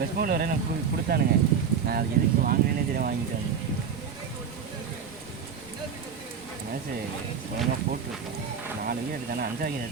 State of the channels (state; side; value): quieter; left; 6.7 dB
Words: பவுலர் வரை நான் கொடுத்தானுங்க. நான் அது எதுக்கு வாங்கினேனே தெரியும் வாங்கிட்டாங்க. மேட்ச்சு ஒழுங்காக போட்டுருக்கேன் 4 விக்கெட் எடுத்தானே 5 விக்கெட்